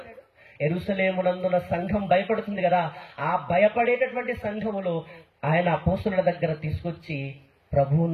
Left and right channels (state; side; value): identical; both; correlation 1.00